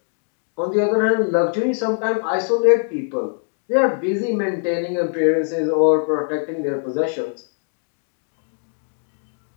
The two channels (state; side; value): silent; right; 64 dB below the other